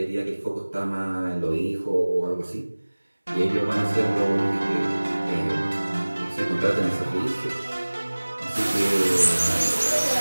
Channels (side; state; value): both; inverted; correlation -1.00